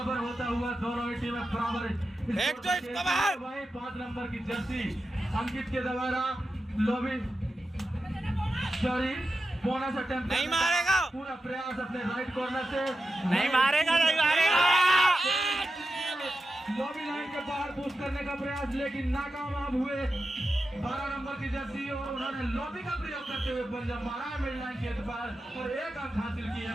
होता हुआ दोनों ही टीमें बराबर। 5 नंबर की जर्सी अंकित के द्वारा लॉबी बोनस अटेम्प्ट नहीं मारेगा, पूरा प्रयास अपने राइट कॉर्नर से नहीं मारेगा लॉबी लाइन के बाहर पुश करने का प्रयास, लेकिन नाकामयाब हुए 12 नंबर की जर्सी और उन्होंने लॉबी का प्रयोग करते हुए पंजा मारा है मिड लाइन के एतबार और 1 अंक हासिल किए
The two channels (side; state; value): both; normal; correlation 0.91